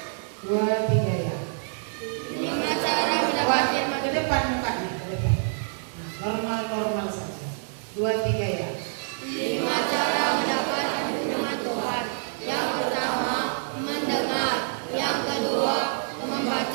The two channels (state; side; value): silent; left; digital silence